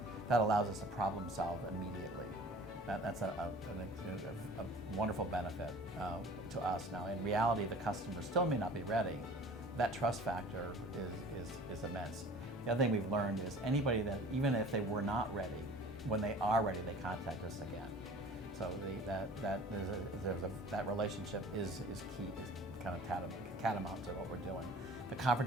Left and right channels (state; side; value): normal; both; correlation 0.45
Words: That allows us to problem solve immediately. That's a wonderful benefit to us. Now, in reality, the customer still may not be ready. That trust factor is immense. The other thing we've learned is anybody that, even if they were not ready, when they are ready, they contact us again. So that relationship is key, is kind of catamount to what we're doing. The